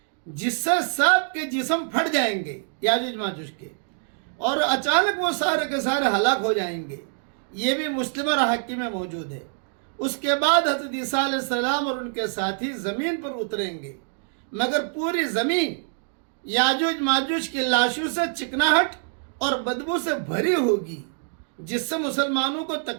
جس سے سب کے جسم پھٹ جائیں گے یاجوج ماجوج کے، اور اچانک وہ سارے کے سارے ہلاک ہو جائیں گے۔ یہ بھی مسلم اور حاکم میں موجود ہے۔ اس کے بعد حضرت عیسیٰ علیہ السلام اور ان کے ساتھی زمین پر اتریں گے، مگر پوری زمین یاجوج ماجوج کی لاشوں سے چکناہٹ اور بدبو سے بھری ہوگی، جس سے مسلمانوں کو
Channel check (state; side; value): silent; left; digital silence